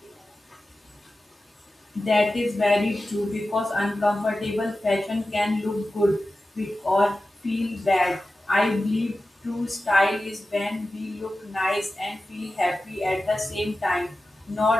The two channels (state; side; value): normal; both; correlation 0.94